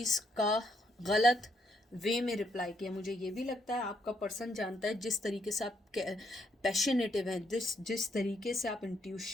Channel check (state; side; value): normal; both; correlation 0.74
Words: का गलत वे में रिप्लाई किया। मुझे ये भी लगता है आपका पर्सन जानता है जिस तरीके से आप पैशनेटिव हैं, जिस तरीके से आप